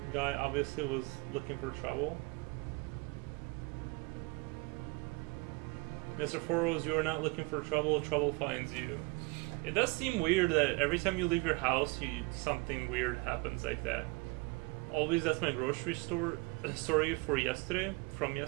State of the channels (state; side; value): quieter; left; 26.7 dB